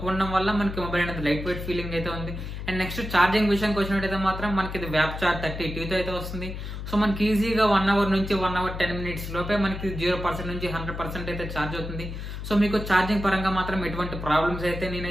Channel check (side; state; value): left; noise; hum, 7 dB below the sound